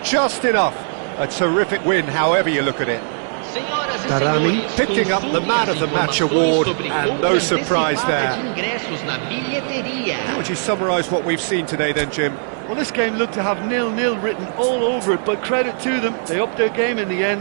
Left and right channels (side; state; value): left; silent; 66 dB below the other